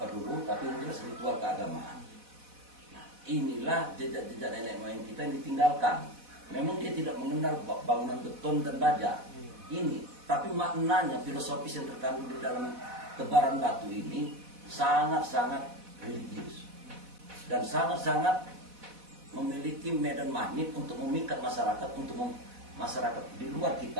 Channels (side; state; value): left; late; 4.1 ms